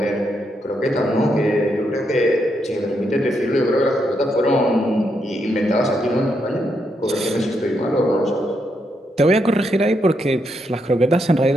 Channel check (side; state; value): both; normal; correlation 0.80